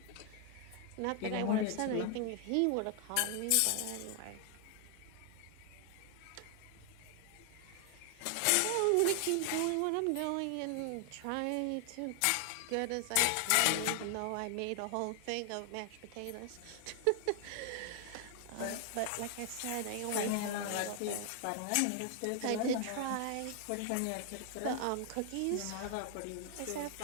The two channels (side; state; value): both; different; correlation 0.00